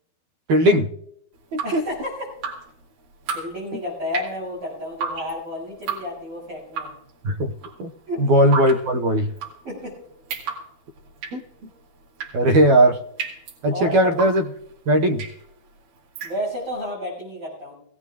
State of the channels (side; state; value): left; late; 12 ms